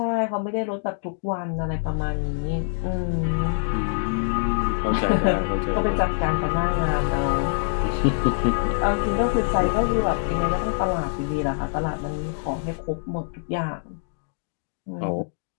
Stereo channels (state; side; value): silent; right; digital silence